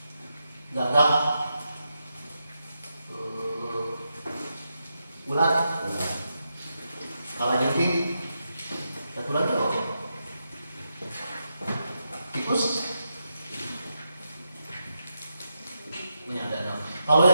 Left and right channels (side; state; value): both; inverted; correlation -0.86